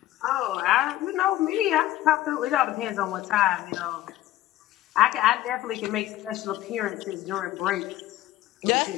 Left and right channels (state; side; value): quieter; right; 14.7 dB